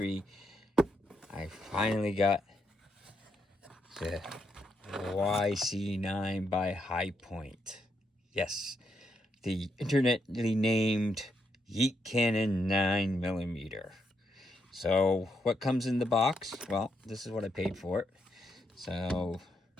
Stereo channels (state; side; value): normal; both; correlation 0.79